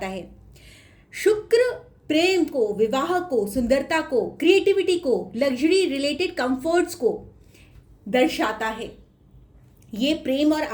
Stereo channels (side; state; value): both; identical; correlation 1.00